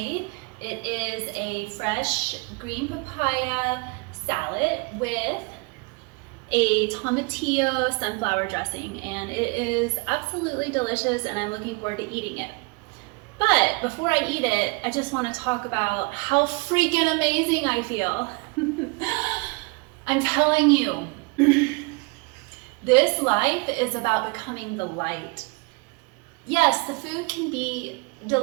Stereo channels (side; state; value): left; quieter; 29.3 dB